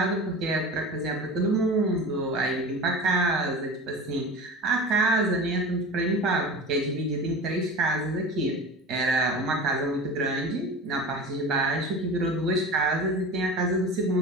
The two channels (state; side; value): normal; both; correlation 0.33